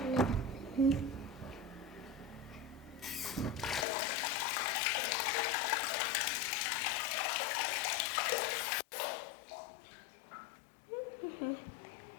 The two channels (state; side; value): drops out; right; at 3.9 s